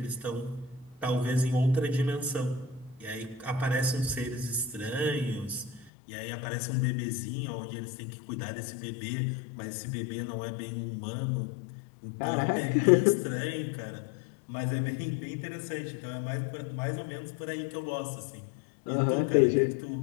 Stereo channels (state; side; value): drops out; right; at 5.9 s